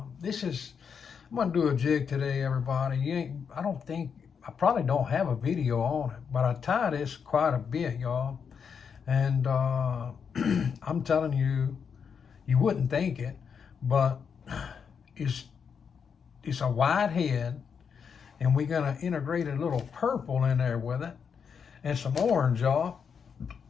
gonna do a jig today, everybody. I probably don't have a video on it, but I tie this quite a bit, y'all. And I'm telling you, you wouldn't think it, but it's it's a wide head, and we're gonna integrate a little purple in there with it, and some orange, y'all.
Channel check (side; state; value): right; quieter; 6.6 dB